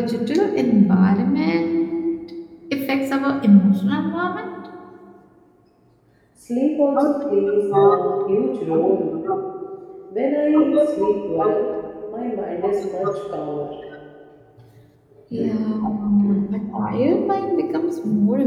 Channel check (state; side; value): identical; both; correlation 1.00